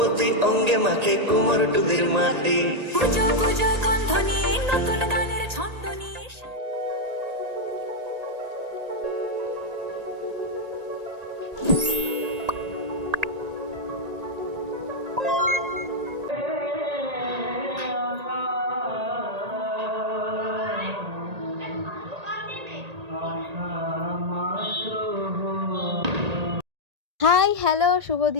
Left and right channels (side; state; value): left; late; 1.8 ms